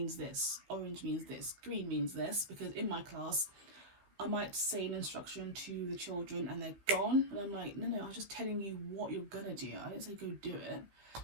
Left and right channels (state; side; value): late; left; 15 ms